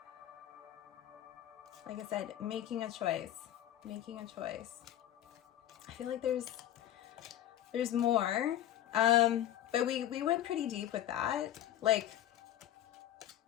Like I said, making a choice. I feel like there's more, but we went pretty deep with that. Like,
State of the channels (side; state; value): right; quieter; 12.1 dB